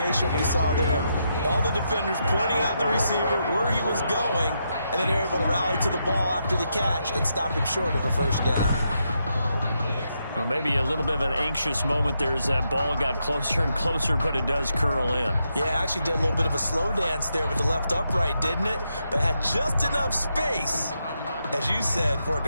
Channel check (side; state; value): both; inverted; correlation -0.82